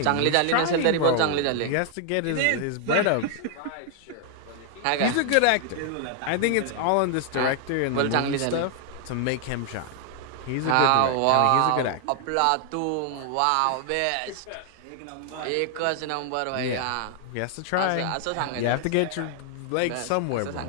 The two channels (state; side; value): different; both; correlation 0.00